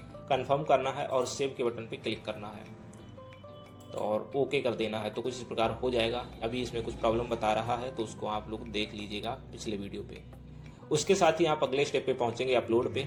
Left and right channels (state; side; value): identical; both; correlation 1.00